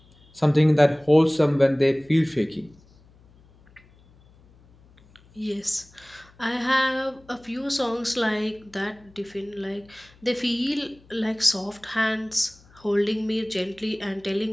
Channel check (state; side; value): noise; left; hum, 28 dB below the sound